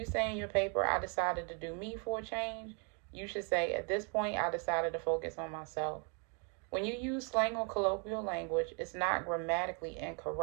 say in your paper, I decided to do me for a change, you should say, at this point, I decided to focus on myself. When you use slang or colloquial language, it's not grammatically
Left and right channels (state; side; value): quieter; left; 37.5 dB